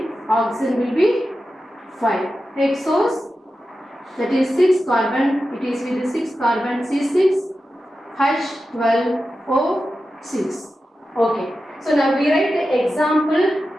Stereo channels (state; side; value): normal; both; correlation 0.92